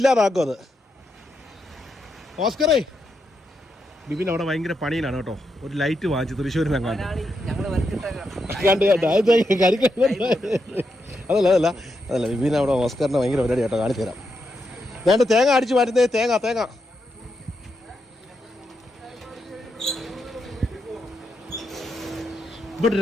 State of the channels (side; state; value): both; normal; correlation 0.83